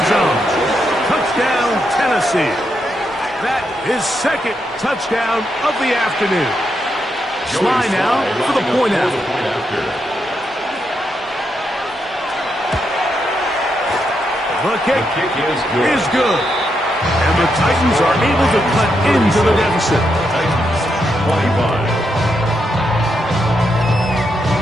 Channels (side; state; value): both; normal; correlation 0.81